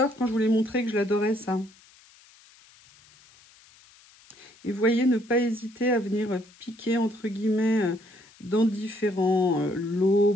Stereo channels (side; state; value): left; noise; hiss, 27 dB below the sound